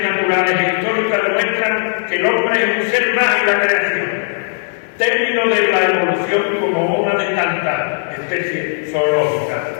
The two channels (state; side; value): silent; right; digital silence